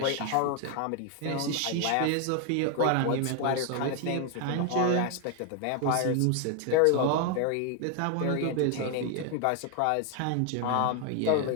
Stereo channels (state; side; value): different; both; correlation 0.01